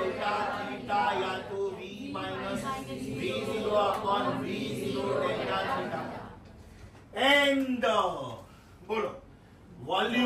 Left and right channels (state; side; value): identical; both; correlation 1.00